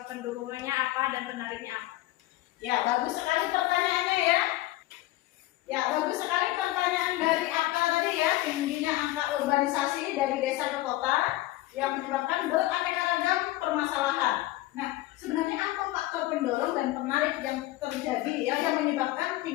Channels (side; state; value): right; quieter; 16.8 dB